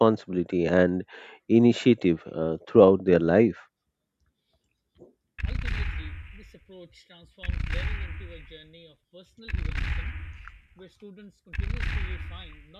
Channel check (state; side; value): identical; both; correlation 1.00